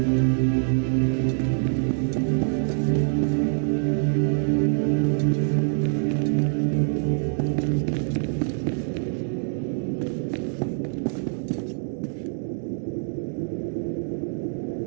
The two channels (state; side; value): silent; left; 62 dB below the other